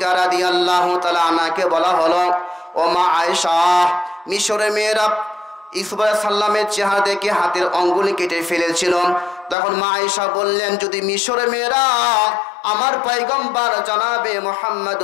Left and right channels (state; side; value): drops out; right; at 9.6 s